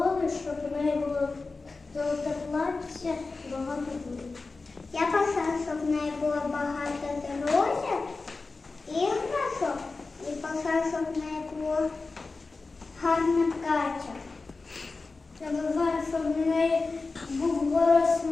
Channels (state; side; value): quieter; right; 3.8 dB